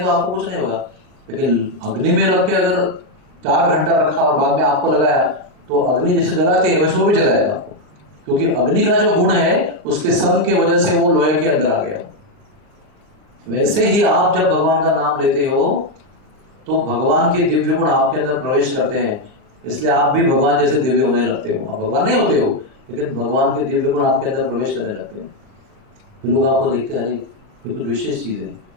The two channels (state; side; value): late; left; 39 ms